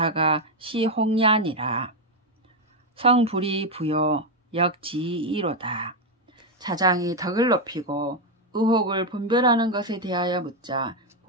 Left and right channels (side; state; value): both; normal; correlation 0.05